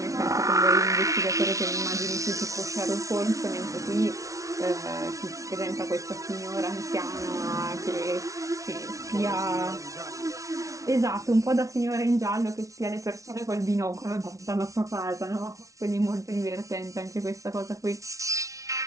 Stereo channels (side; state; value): left; late; 0.16 ms